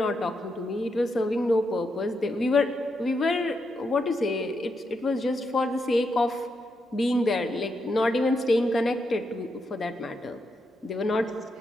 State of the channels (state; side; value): normal; both; correlation 0.83